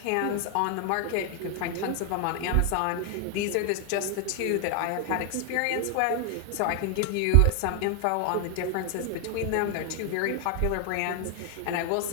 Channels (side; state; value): both; different; correlation 0.00